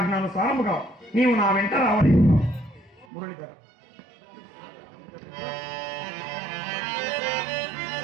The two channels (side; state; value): left; drops out; at 3.1 s